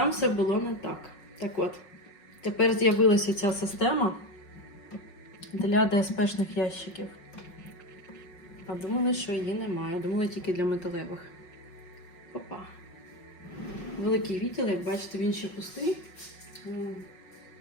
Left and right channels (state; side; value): late; right; 5.5 ms